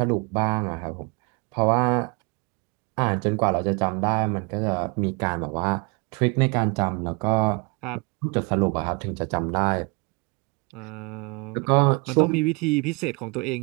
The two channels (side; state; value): left; quieter; 29.9 dB